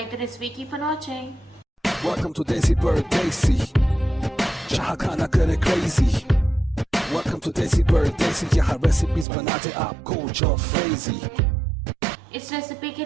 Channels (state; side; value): drops out; left; at 9.2 s